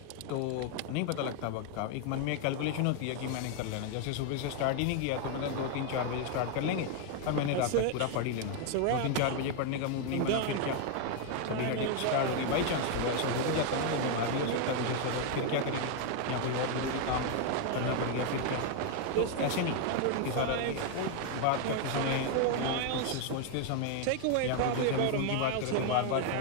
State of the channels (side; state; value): both; different; correlation 0.01